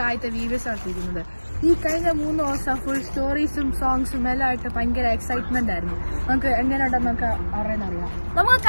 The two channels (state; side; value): inverted; both; correlation -1.00